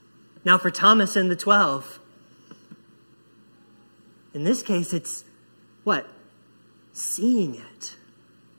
Now for Thomas and the 12, in this case, it's what? Seeing it.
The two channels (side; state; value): both; inverted; correlation -1.00